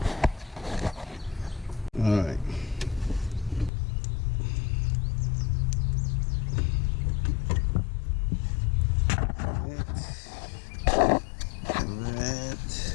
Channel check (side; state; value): right; drops out; at 3.7 s